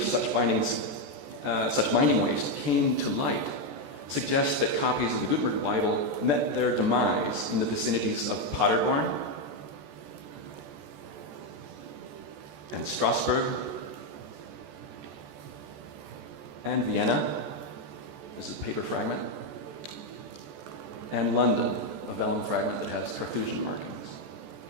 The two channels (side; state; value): left; late; 14 ms